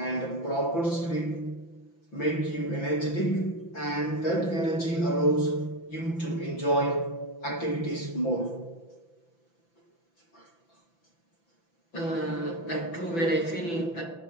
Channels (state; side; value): late; right; 5.9 ms